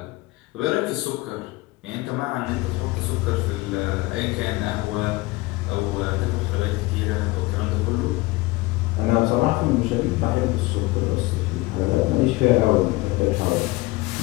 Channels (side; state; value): right; quieter; 21.1 dB